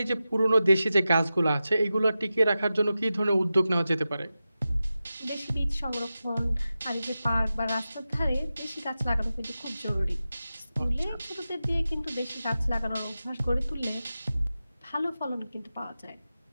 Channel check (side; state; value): both; inverted; correlation -0.93